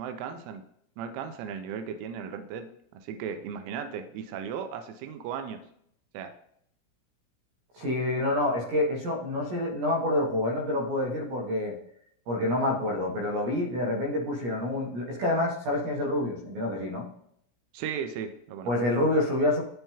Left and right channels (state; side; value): late; left; 17 ms